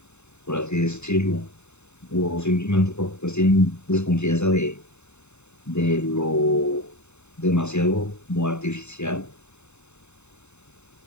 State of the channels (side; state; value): right; late; 0.82 ms